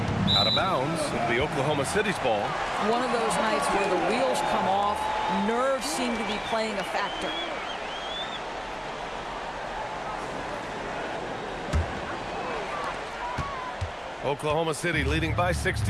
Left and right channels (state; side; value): identical; both; correlation 1.00